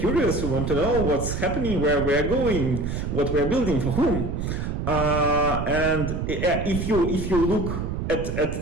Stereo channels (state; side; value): noise; right; rumble, 3 dB below the sound